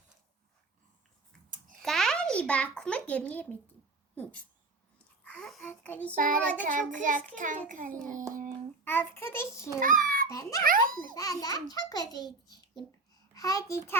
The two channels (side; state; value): left; quieter; 3.5 dB